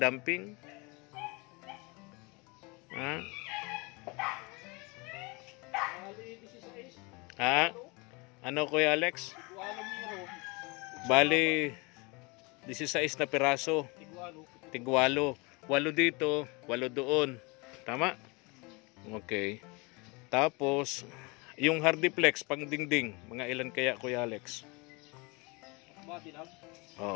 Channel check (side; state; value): right; quieter; 27.6 dB